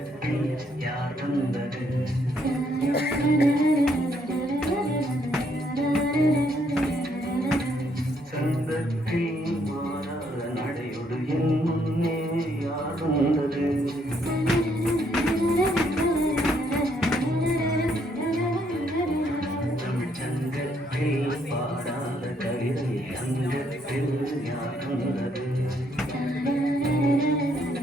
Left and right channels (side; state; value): both; normal; correlation 0.71